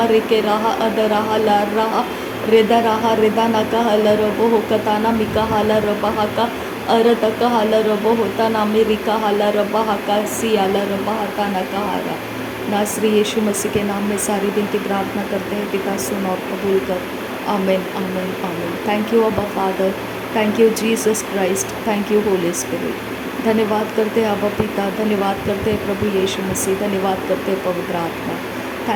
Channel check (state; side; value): identical; both; correlation 1.00